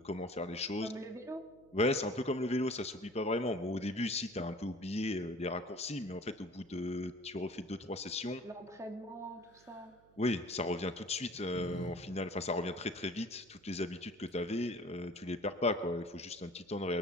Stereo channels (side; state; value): right; noise; hum, 28 dB below the sound